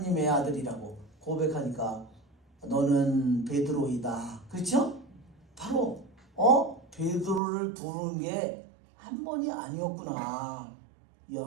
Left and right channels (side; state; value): left; drops out; at 7.4 s